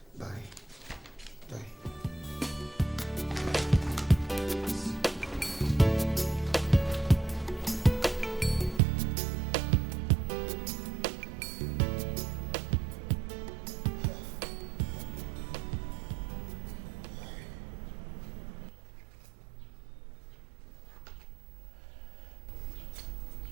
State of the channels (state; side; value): drops out; left; at 8.8 s